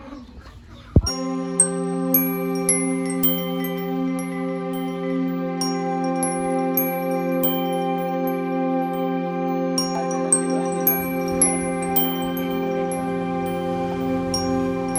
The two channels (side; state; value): both; identical; correlation 1.00